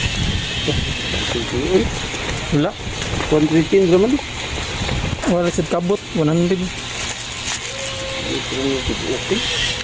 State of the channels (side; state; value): both; identical; correlation 1.00